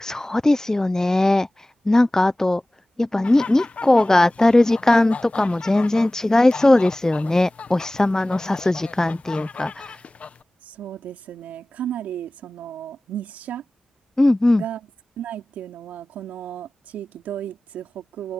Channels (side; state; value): both; normal; correlation 0.98